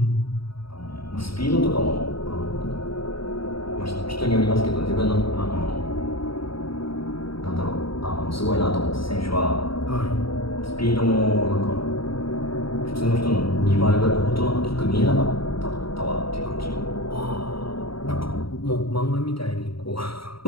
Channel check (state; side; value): late; right; 0.75 ms